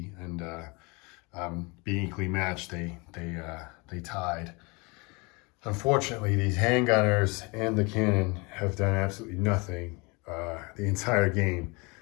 and being equally matched, they tied. Unfortunately, these handgunners and the cannon have done absolutely nothing the entire game.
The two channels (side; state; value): right; quieter; 28.1 dB